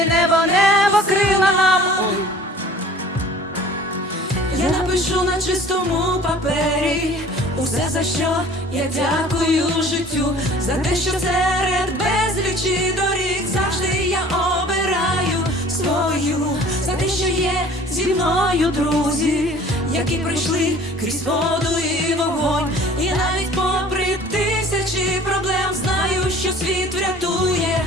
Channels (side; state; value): both; normal; correlation 0.48